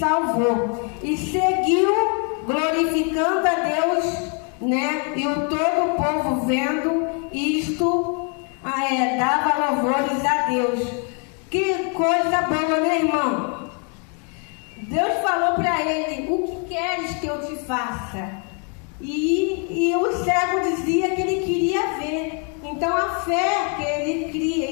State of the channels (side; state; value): right; quieter; 38.5 dB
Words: E seguiu glorificando a Deus, né? E o todo o povo vendo isto, dava louvores a Deus. Que coisa boa, né, irmão? Deus falou para ele: o que queres que eu te faça? E o cego dizia que ele queria ver. Então a fé que ele cria